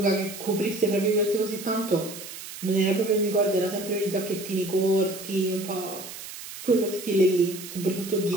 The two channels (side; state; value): right; noise; hiss, 12 dB below the sound